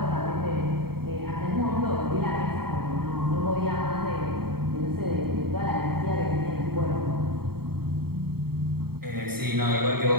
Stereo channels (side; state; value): left; late; 0.95 ms